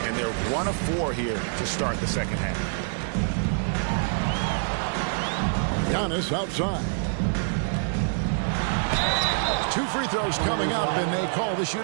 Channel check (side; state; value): left; silent; 59 dB below the other